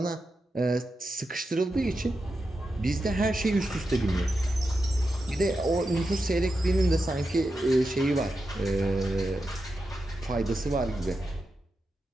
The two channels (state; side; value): normal; both; correlation 0.89